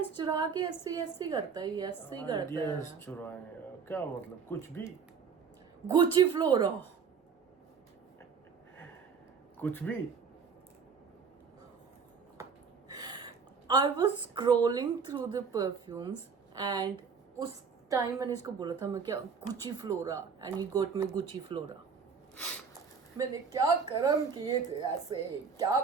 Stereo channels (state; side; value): quieter; left; 5.8 dB